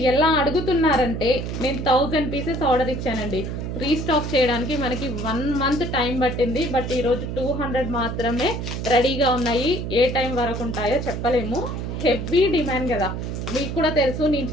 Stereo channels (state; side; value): noise; right; hum, 4 dB below the sound